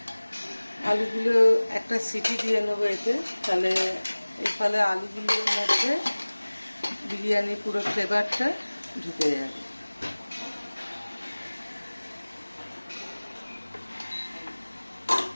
আলুগুলো একটা সিটি দিয়ে নেবো এতে, তাহলে এর ফলে আলুগুলোর মধ্যে বিরিয়ানির পুরো ফ্লেভারটা ঢুকে যাবে।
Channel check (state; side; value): inverted; both; correlation -1.00